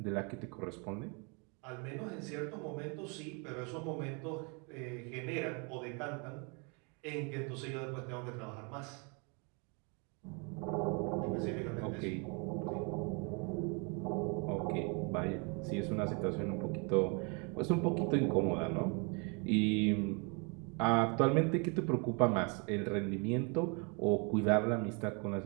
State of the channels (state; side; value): quieter; left; 33.9 dB